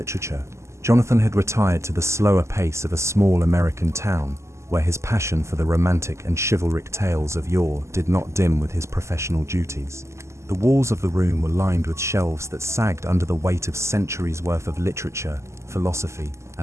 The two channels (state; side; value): late; left; 0.13 ms